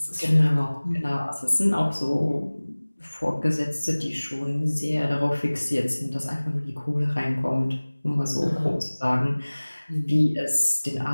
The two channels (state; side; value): inverted; both; correlation -1.00